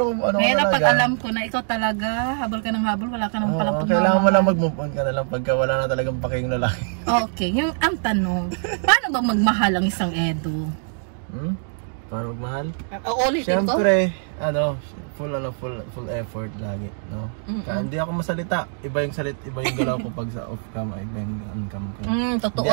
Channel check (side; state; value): left; silent; digital silence